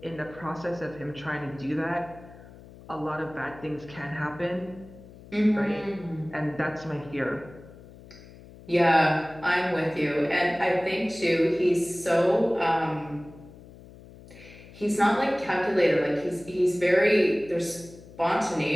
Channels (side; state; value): left; noise; hum, 20 dB below the sound